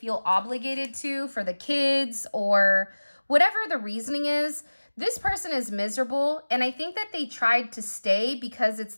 obligated to for the kids or whatever the reasoning is, this person is miserable. And I think that they tried to stay because it's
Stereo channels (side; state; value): both; inverted; correlation -1.00